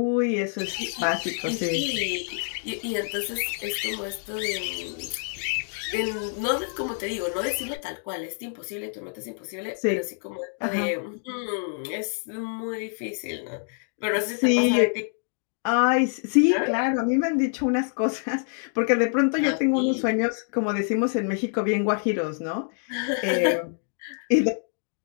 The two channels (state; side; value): silent; right; 61 dB below the other